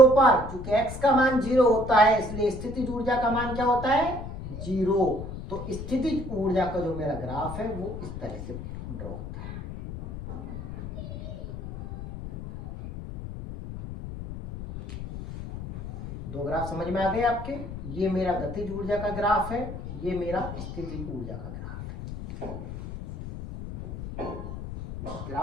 पर, चूंकि x का मान 0 होता है इसलिए स्थितिज ऊर्जा का मान क्या होता है 0। तो स्थितिज ऊर्जा का जो मेरा ग्राफ है वो इस तरह से ड्रॉ होता है। दो ग्राफ समझ में आ गए आपके। ये मेरा गतिज ऊर्जा का ग्राफ है, ये मेरा स्थितिज ऊर्जा का ग्राफ है।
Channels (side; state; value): left; noise; rumble, 9 dB below the sound